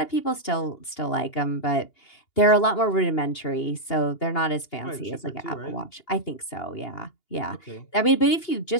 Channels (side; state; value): right; late; 2.8 ms